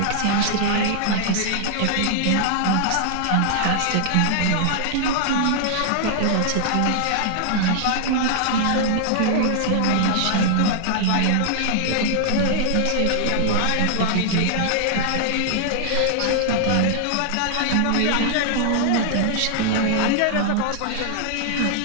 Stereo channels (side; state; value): both; different; correlation -0.01